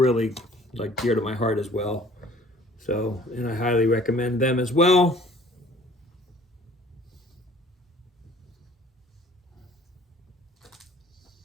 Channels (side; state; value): both; normal; correlation 0.52